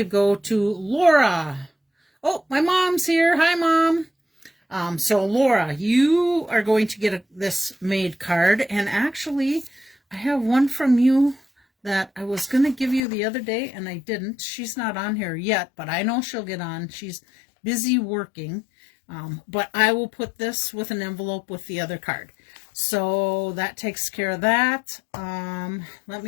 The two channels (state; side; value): drops out; right; at 13.0 s